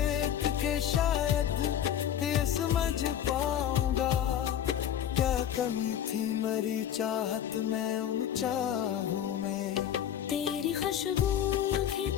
के शायद ये समझ पाऊंगा, क्या कमी थी मेरी चाहत में उन चाहूं में। तेरी खुशबू अभी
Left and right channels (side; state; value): right; quieter; 10.1 dB